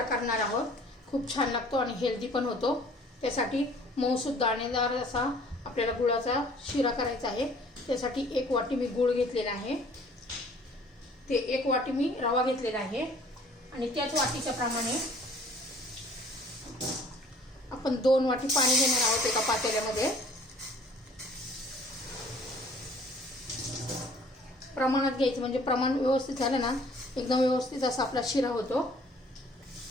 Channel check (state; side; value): normal; both; correlation 0.54